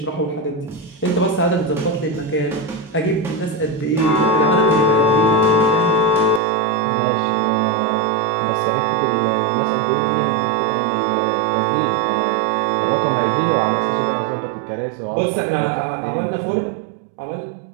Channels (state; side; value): drops out; left; at 6.4 s